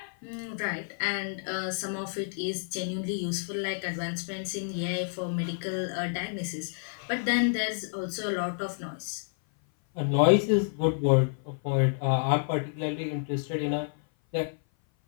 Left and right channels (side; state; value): right; silent; 56 dB below the other